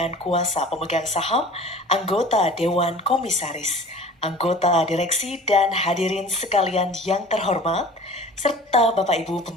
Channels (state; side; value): normal; both; correlation 0.43